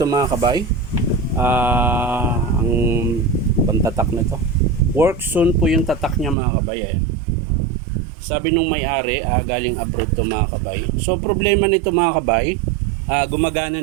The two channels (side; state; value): left; drops out; at 6.4 s